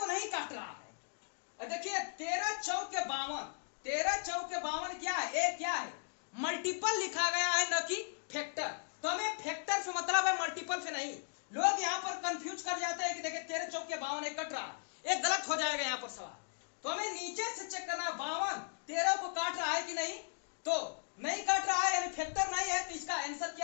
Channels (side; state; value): right; silent; digital silence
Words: नहीं काट रहा है। देखिए 13 चौके 52, 13 चौके 52 क्या है, एक क्या है, मल्टीपल लिखा गया है, न कि फैक्टर। तो हमें फैक्टर से मतलब है, मल्टीपल से नहीं। लोग यहाँ पर कंफ्यूज कर जाते हैं कि देखिए 13 चौके 52 कट रहा है, एक गलत हो जाएगा यहाँ पर सवाल। तो हमें नीचे से चेक करना है 52 13 को काट रहा है कि नहीं, तो नहीं काट रहा है यानी फैक्टर नहीं है। तो इसका आंसर